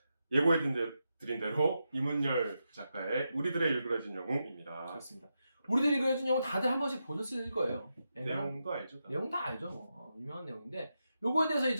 예고해드린 대로 이문열 작가의 우리들의 일그러진 영웅입니다. 그렇습니다. 우리들이 그려진 영웅 다들 한 번씩 보셨을 거예요. 내용도 알죠? 내용 다 알죠. 뭐. 유명한 내용인데 요거에 대해서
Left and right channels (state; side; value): inverted; both; correlation -0.87